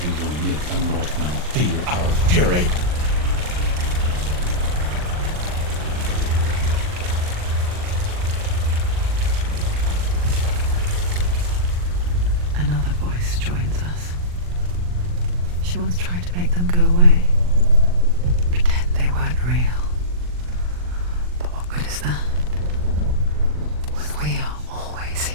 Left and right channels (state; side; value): late; left; 40 ms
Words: we will make the Northmen feel our fury. Another voice joins us. She once tried to make them go away. Pretend they weren't real. But what good is that? When we are always